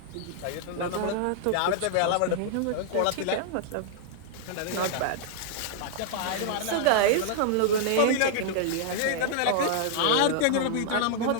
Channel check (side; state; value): both; different; correlation -0.01